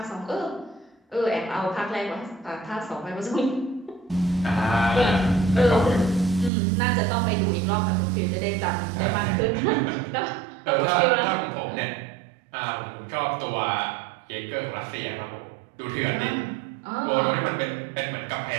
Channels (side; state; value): left; drops out; at 6.5 s